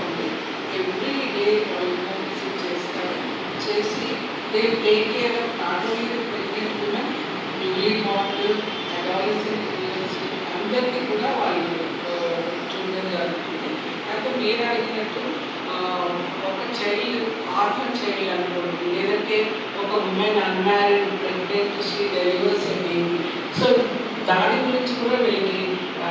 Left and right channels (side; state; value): both; identical; correlation 1.00